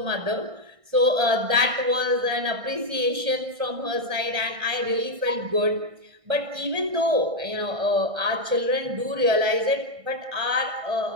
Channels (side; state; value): left; late; 1.6 ms